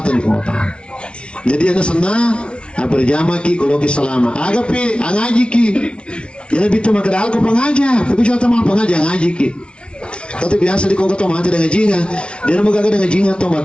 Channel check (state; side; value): late; right; 0.058 ms